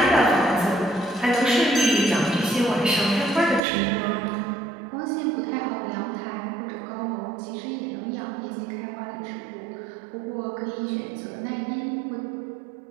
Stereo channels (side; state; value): left; drops out; at 3.6 s